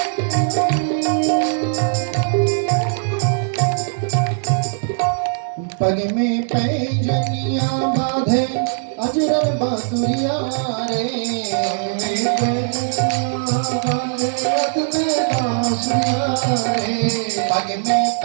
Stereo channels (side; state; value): left; silent; digital silence